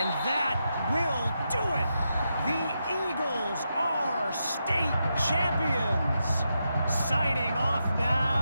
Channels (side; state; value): both; inverted; correlation -0.85